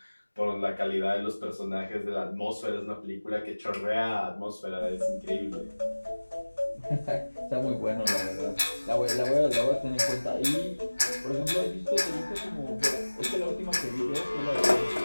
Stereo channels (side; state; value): both; inverted; correlation -1.00